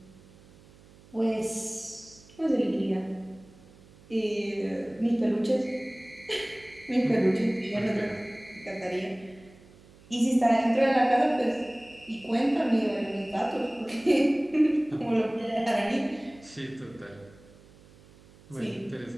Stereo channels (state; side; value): noise; right; hum, 25 dB below the sound